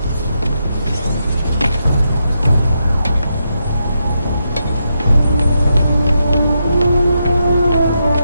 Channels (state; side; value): inverted; both; correlation -0.83